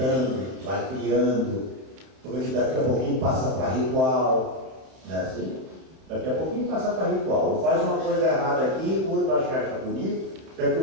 vai criando, porque daqui a pouquinho passa para ritual, não é assim? Daqui a pouquinho passa para ritual, ou faz uma coisa errada aqui, o outro acha bonito, daqui a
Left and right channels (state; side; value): late; left; 31 ms